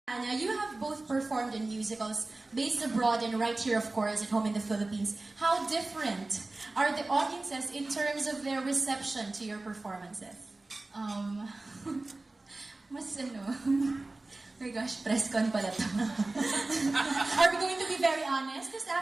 Tanya, you have both performed in musicals based abroad and right here, of course, at home in the Philippines. How different are the audiences in terms of their reception to your performances? Mas ano, oh my gosh, Presscon pala to. Are we going to be very honest this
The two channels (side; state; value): left; quieter; 3.1 dB